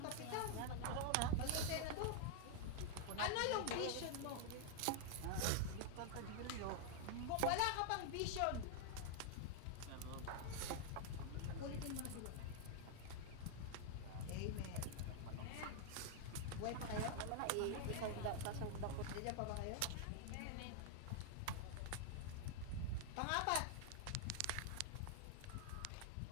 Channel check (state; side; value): different; both; correlation -0.01